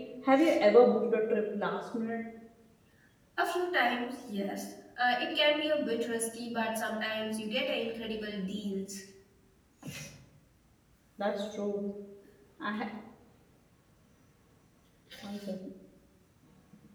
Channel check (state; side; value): identical; both; correlation 1.00